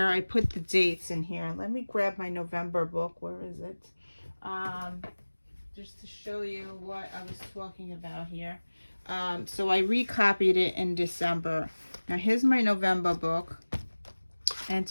I put the dates in here. Let me grab my November book. Where is it? Just to show you what I was talking about here. So I recopied it in December. Now, here's my November book. And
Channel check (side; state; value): both; inverted; correlation -1.00